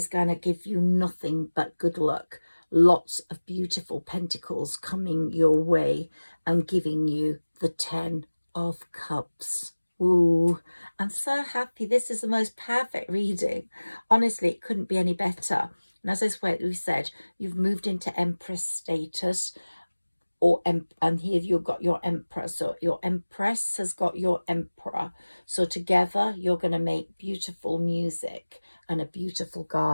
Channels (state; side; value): inverted; both; correlation -1.00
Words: give you nothing but good luck. Lots of beautiful pentacles coming your way and giving you the 10 of Cups. Ooh, I'm so happy. This is the most perfect reading. Honestly, it couldn't be any better. And as we said, you've moved into Empress status, and here you've got your Empress. So your Empress has got your Emperor. So together you're going to make beautiful music and a beautiful